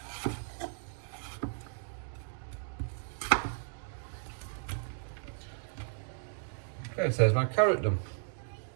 Okay, so there's my carrot done.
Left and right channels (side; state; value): left; silent; digital silence